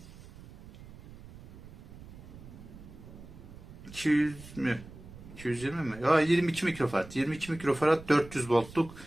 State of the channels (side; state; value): right; noise; rumble, 17 dB below the sound